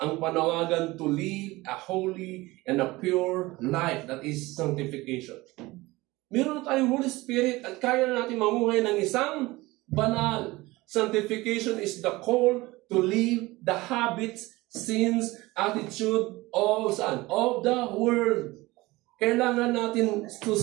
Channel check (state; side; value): quieter; left; 20.5 dB